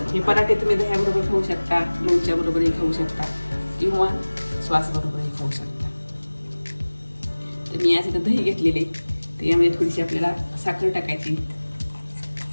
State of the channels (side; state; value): both; inverted; correlation -1.00